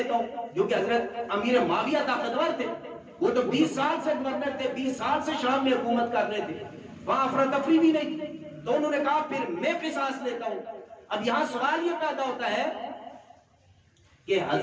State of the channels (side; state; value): both; identical; correlation 1.00